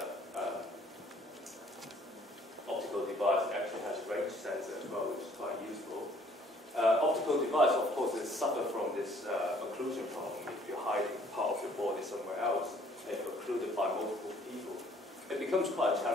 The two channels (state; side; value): normal; both; correlation 0.59